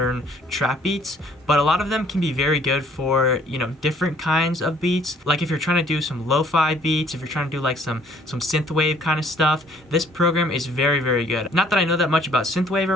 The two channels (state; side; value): normal; both; correlation 0.60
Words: trap beats, but a lot of them can be very good for, different kinds of beats. Like if you're trying to do some lo-fi beats, if you're trying to do like some synthwave kind of stuff, this program is very good. Not that I know that much about synthwave